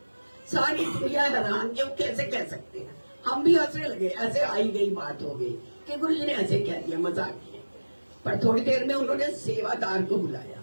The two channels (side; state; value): both; inverted; correlation -1.00